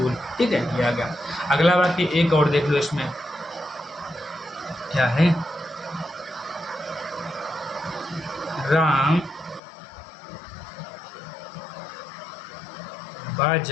ठीक है, ये आ गया। अगला वाक्य एक और देख लो, इसमें क्या है? राम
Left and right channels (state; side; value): drops out; right; at 9.6 s